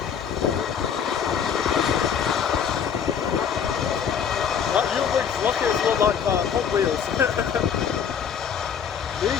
That Uwix rockets look like Hot Wheels.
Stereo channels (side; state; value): right; quieter; 7.5 dB